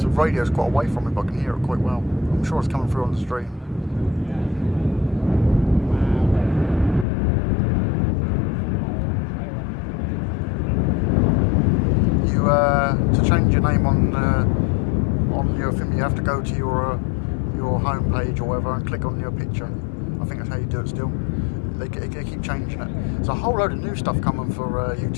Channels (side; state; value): right; drops out; at 7.1 s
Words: the radio's quite away from me, but I can hear it quite well. I'm sure it's coming through on the stream. To change your name on your thing, you have to go to your home page or whatever and click on your picture. I think that's how you do it still. They keep changing it. There's a whole load of new stuff coming for